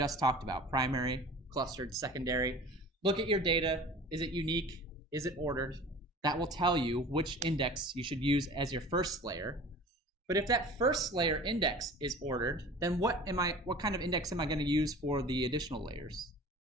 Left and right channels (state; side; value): normal; both; correlation 0.41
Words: talked about, primary, clustered, secondary, look at your data. Is it unique? Is it ordered? That will tell you which index you should use as your first layer. But if that first layer index is ordered, then what kind of index am I going to use for the additional layers?